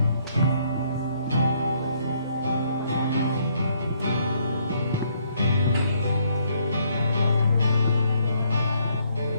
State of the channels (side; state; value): both; inverted; correlation -0.69